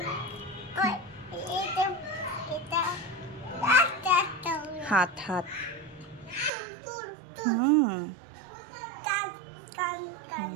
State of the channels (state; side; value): drops out; left; at 6.5 s